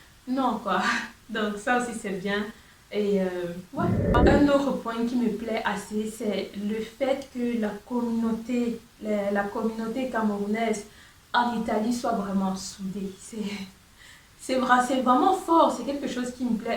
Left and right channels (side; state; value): both; identical; correlation 1.00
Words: Non, quoi. Donc ça aussi c'est bien. Et ouais. Un autre point qui me plaît assez, c'est le fait que la communauté camerounaise en Italie soit vraiment soudée. C'est vraiment fort, c'est quelque chose qui me